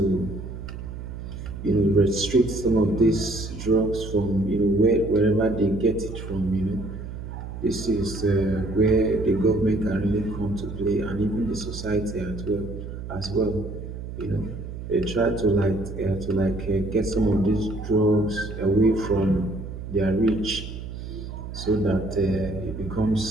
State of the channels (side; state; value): right; noise; hum, 9 dB below the sound